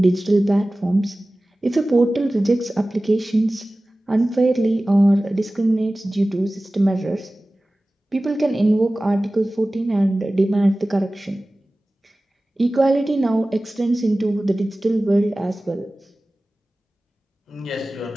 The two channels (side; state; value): both; normal; correlation 0.97